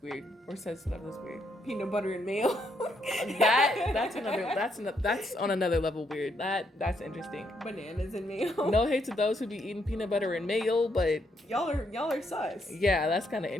weird or says stuff that's weird. Peanut butter and mayo. that's on another level weird. That's interesting. Bananas and mayo. No hate to those who be eating peanut butter and mayo, but y'all are sus. Yeah, that's kind of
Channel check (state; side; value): normal; both; correlation 0.75